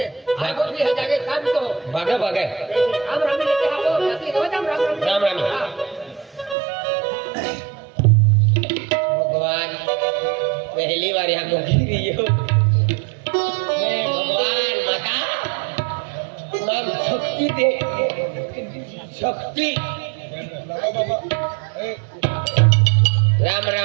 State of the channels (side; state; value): left; drops out; at 6.6 s